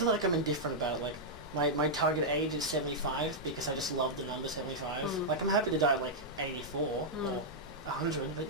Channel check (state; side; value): normal; both; correlation -0.07